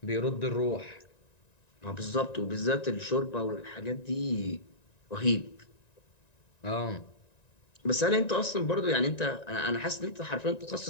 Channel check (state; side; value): late; right; 1.9 ms